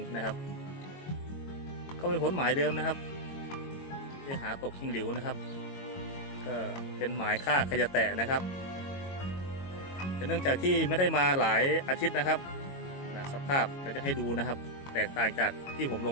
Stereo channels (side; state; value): right; late; 22 ms